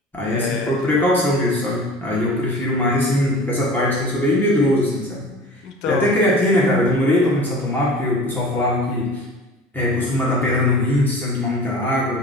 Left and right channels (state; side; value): normal; both; correlation 0.40